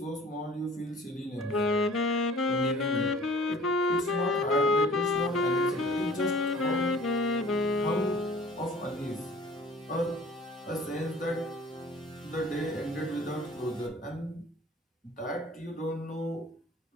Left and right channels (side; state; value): both; normal; correlation 0.48